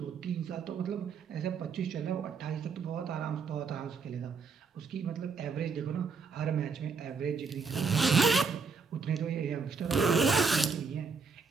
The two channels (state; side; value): quieter; left; 5.1 dB